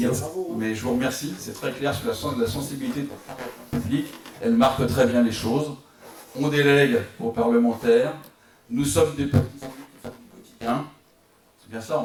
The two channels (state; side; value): identical; both; correlation 1.00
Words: Mais je vous remercie, c'est très clair sur la sensibilité publique. Elle marque très bien les choses. On délègue aux parlementaires. Nous sommes des petits élus qui font du quotidien. C'est bien ça